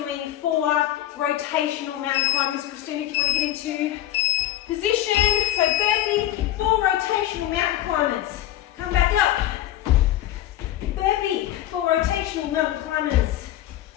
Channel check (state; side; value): quieter; right; 13.2 dB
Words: 4 rotational mountain climbers. Christina, if you want to get into position. So burpee, 4 rotational mountain climbers. Come back up. Burpee, 4 rotational mountain climbers.